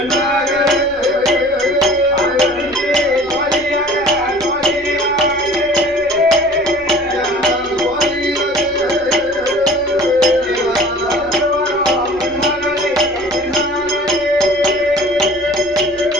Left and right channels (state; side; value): noise; left; rumble, 24 dB below the sound